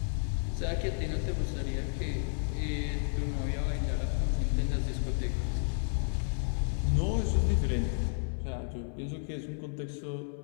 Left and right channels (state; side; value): silent; right; 57 dB below the other